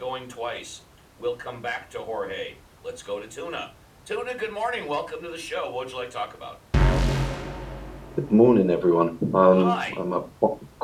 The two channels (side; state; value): both; identical; correlation 1.00